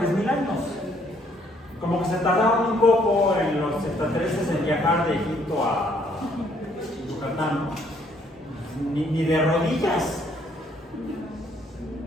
años. Como que se tardaron un poco en los extraterrestres en viajar de Egipto a Yucatán, ni de rodillas.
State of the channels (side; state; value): both; normal; correlation 0.66